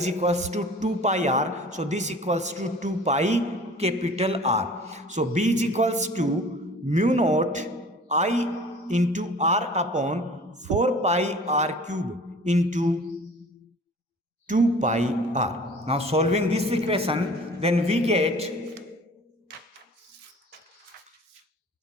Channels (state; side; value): normal; both; correlation 0.46